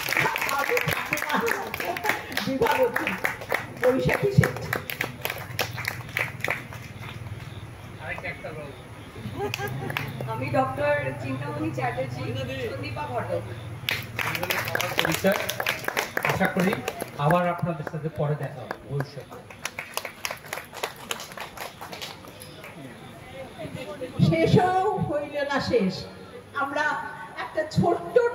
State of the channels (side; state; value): both; identical; correlation 1.00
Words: বিভাবতী, বৈশাখী শেঠ। আমি ডক্টর চিন্তামণি চ্যাটার্জি, সন্দীপা ঘটক। পরিচয়। আশা করি আবার আপনাদের সাথে পরে দেখা হবে ভবিষ্যতে। শেষও হইল না শেষ। আমরা একটা ছোট্ট